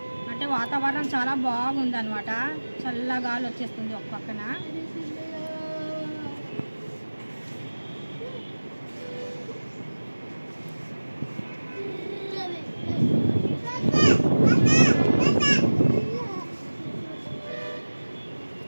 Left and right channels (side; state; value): both; inverted; correlation -1.00